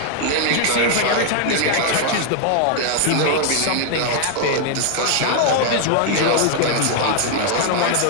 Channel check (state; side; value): different; both; correlation 0.00